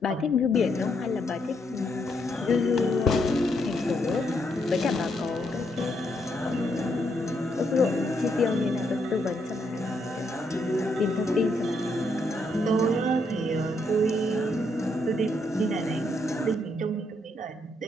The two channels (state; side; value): normal; both; correlation 0.76